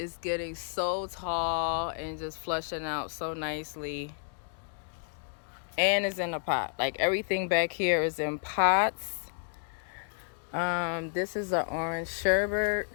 getting so tall and just flushing out so nicely. And it's in a pot. Like everything back here is in pots. This is an orange sherbet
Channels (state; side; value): silent; right; digital silence